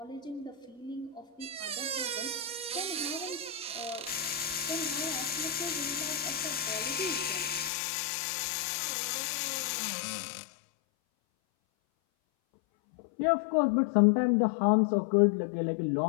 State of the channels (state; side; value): drops out; right; at 7.7 s